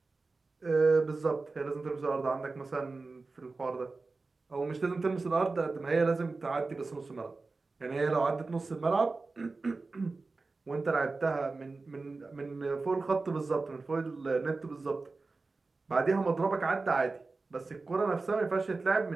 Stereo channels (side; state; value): left; quieter; 3.8 dB